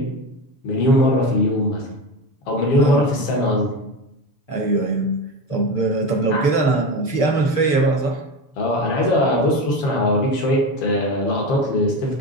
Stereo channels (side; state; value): right; late; 6.8 ms